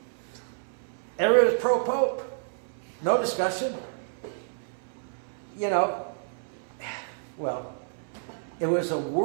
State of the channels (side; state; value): left; silent; 57 dB below the other